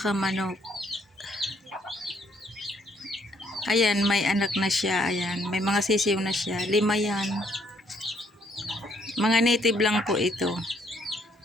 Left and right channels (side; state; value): both; normal; correlation 0.69